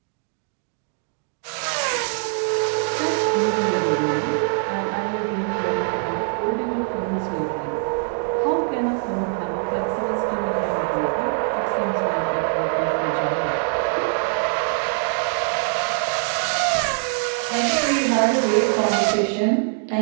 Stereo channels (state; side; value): silent; left; 63 dB below the other